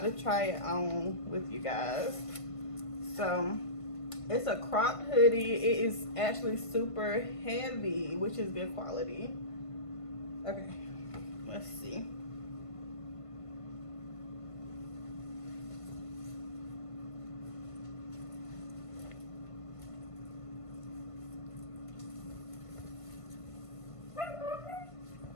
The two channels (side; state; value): right; late; 1.5 ms